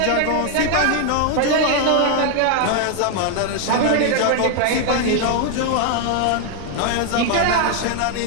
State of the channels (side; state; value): both; different; correlation 0.01